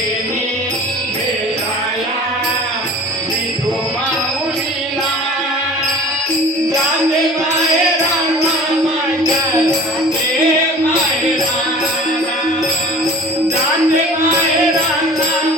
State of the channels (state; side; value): normal; both; correlation 0.43